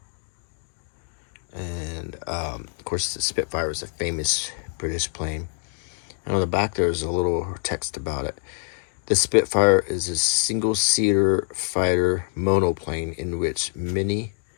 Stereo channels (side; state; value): right; silent; digital silence